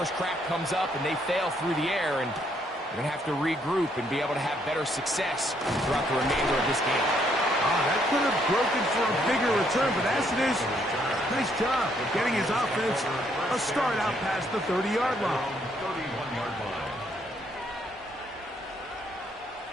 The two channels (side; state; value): both; normal; correlation 0.71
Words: crack comes up and they fail through the air, and we're going to have to regroup and be able to have better success throughout the remainder of this game. That could have broken for a bigger return, but as it is, nice job of getting his offense a start out past the 30-yard line. 31-yard line.